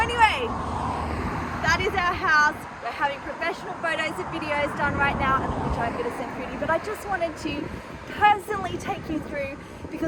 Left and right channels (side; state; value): both; identical; correlation 1.00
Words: that is our house. We're having professional photos and videos done right now, which I'm going to send through to you. But I just wanted to personally take you through,